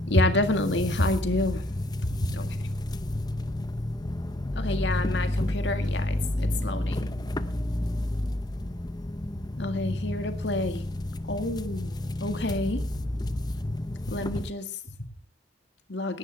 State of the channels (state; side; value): normal; both; correlation 0.68